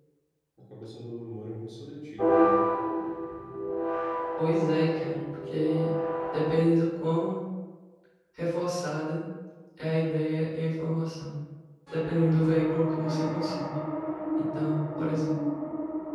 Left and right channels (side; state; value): both; identical; correlation 1.00